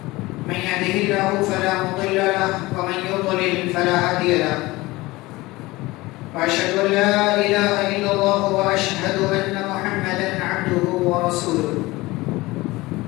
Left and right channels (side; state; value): right; quieter; 20.5 dB